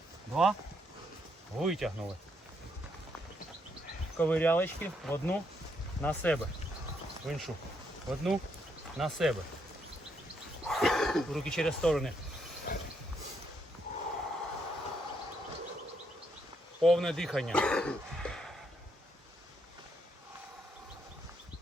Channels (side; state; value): both; normal; correlation 0.76